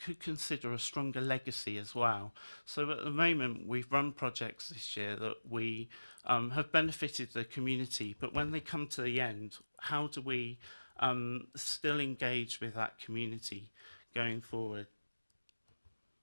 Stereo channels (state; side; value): inverted; both; correlation -1.00